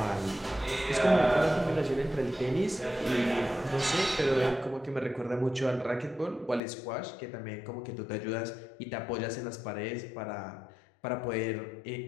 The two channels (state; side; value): drops out; right; at 6.6 s